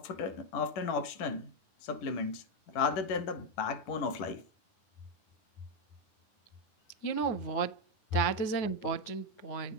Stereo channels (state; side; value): late; right; 10 ms